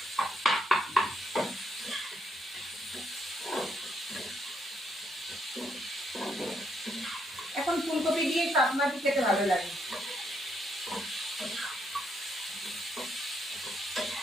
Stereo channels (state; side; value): normal; both; correlation 0.75